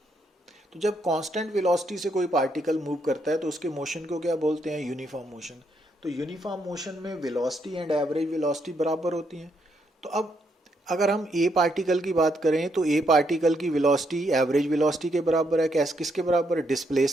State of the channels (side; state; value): both; normal; correlation 0.76